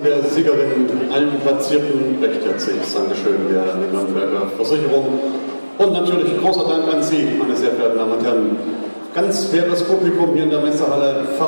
Der Siegerin, allen Platzierten, recht herzliches Dankeschön der Nürnberger Versicherung und natürlich großer Dank an Sie, meine sehr verehrten Damen und Herren. Ganz faires Publikum hier in der Messehalle,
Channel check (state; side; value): inverted; both; correlation -1.00